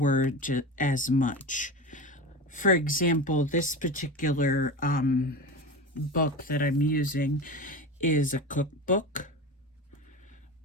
as much. For example, this particular book that I'm using is a cookbook.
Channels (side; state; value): both; normal; correlation 0.27